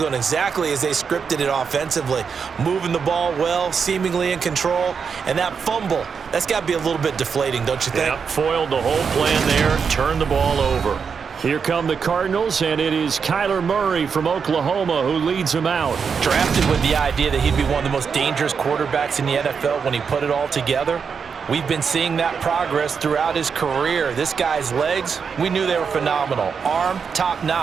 going exactly as they scripted it offensively. Moving the ball well, seemingly in control, and that fumble, that's got to be a little bit deflating, don't you think? Yeah, foiled the whole plan there, turned the ball over. Here come the Cardinals, and it is Kyler Murray from Oklahoma who leads them out. Drafted with the idea that he'd be one of the most dangerous quarterbacks in the NFL when he put it all together. We've been seeing that progress throughout his career. This guy's legs, we knew they were phenomenal. Arm,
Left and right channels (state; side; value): quieter; left; 6.1 dB